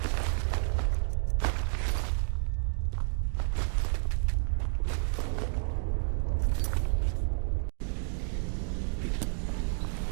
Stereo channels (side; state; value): left; silent; digital silence